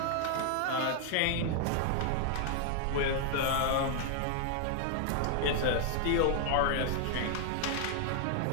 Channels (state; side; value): different; both; correlation 0.00